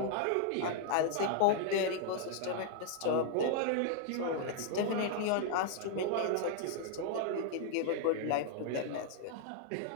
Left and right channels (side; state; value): both; different; correlation -0.01